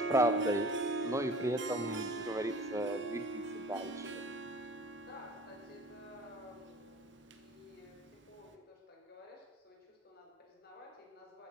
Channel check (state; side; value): normal; both; correlation 0.44